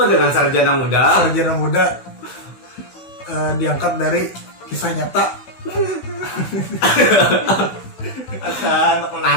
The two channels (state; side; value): late; right; 16 ms